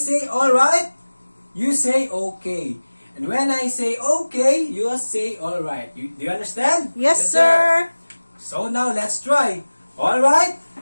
say alright, you say okay. And when I say okay, you say alright. Do you understand? Yes, sir. So now, let's try. Alright?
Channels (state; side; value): inverted; both; correlation -1.00